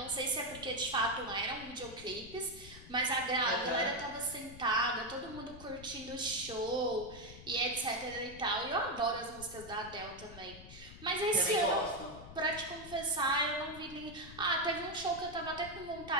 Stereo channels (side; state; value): left; noise; rumble, 15 dB below the sound